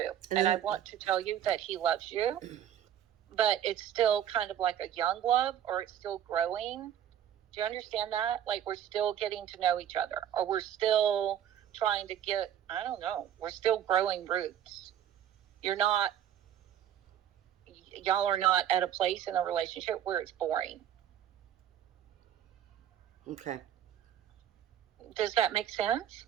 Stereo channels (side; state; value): left; quieter; 10.4 dB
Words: And I want to tell you that he loves you, but it's still kind of like a young love, or it's still growing. Do you understand that? Like, we're still getting to know each other, or we're still trying to we're still growing roots. Y'all are not at a place in a relationship where it's boring. Okay. Does that make sense?